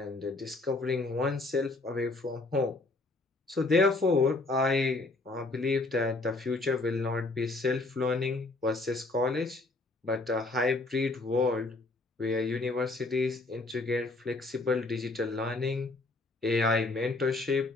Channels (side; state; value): right; quieter; 3.2 dB